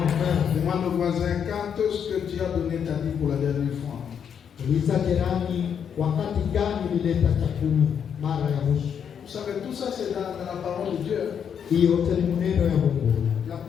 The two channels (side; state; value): right; quieter; 7.8 dB